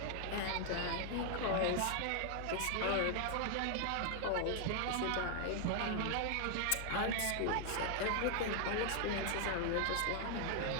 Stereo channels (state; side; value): different; both; correlation 0.00